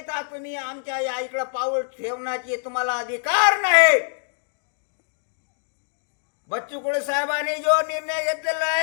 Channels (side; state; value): right; silent; digital silence